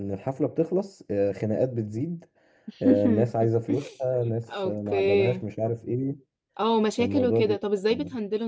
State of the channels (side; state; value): both; identical; correlation 1.00